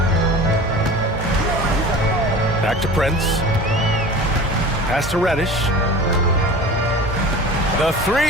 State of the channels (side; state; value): both; normal; correlation 0.37